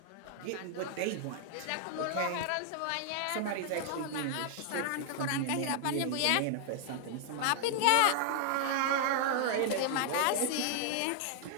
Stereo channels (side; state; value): both; different; correlation 0.00